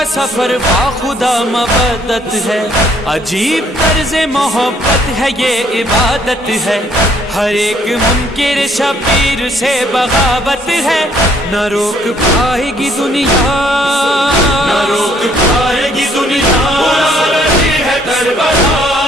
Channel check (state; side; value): normal; both; correlation 0.65